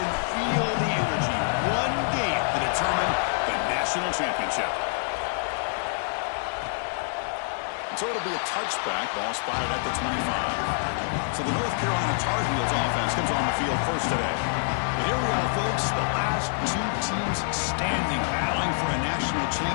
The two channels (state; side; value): silent; right; 60 dB below the other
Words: feel the energy. One game to determine the national championship. So it'll be a touchback, ball spotted at the 25. So the North Carolina Tar Heels offense comes on the field first today. And here we are, folks, the last two teams standing, battling for a national